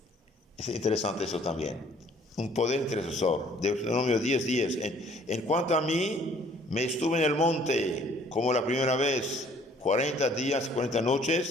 Es interesante eso también. Un poder intercesor. Deuteronomio 10:10. En cuanto a mí, me estuve en el monte como la primera vez, 40 días, 40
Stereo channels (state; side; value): normal; both; correlation 0.58